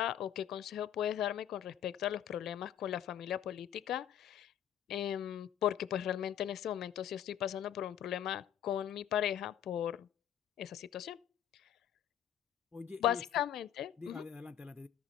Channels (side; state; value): right; quieter; 10.3 dB